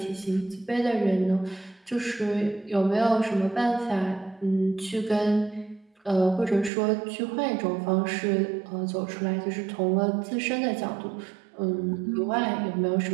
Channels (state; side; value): drops out; left; at 6.7 s